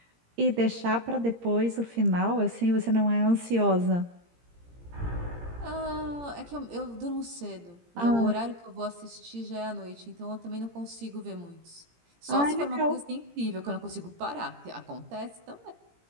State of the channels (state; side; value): late; left; 17 ms